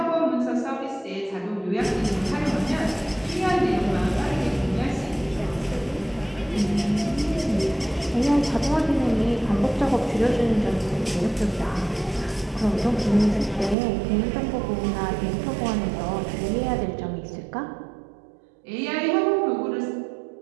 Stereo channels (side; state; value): left; drops out; at 13.8 s